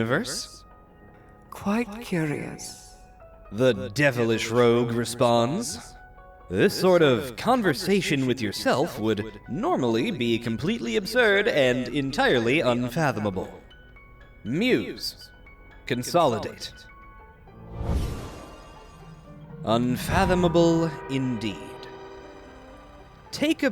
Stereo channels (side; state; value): both; identical; correlation 1.00